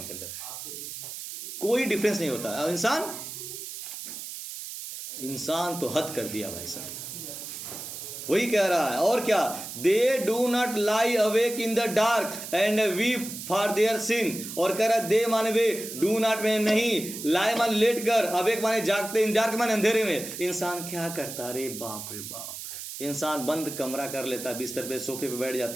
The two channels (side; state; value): right; noise; hiss, 9 dB below the sound